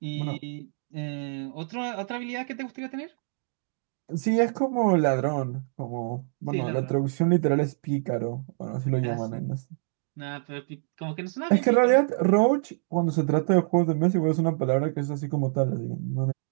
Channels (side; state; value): left; silent; digital silence